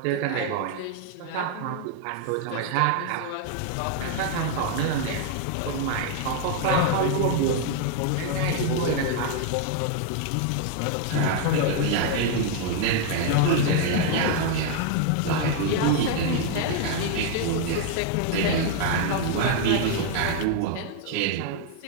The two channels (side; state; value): both; different; correlation 0.00